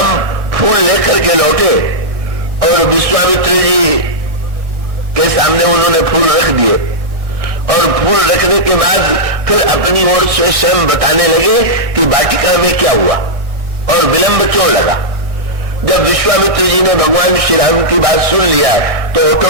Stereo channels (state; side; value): late; left; 1.4 ms